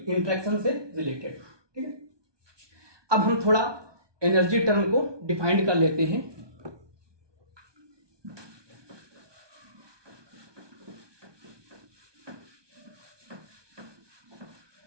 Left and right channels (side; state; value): left; late; 1.2 ms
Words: से रिलेटेड। ठीक है, अब हम थोड़ा एनर्जी टर्म को डिफाइंड कर लेते हैं।